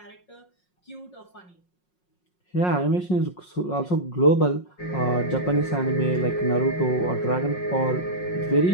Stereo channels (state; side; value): late; right; 5.5 ms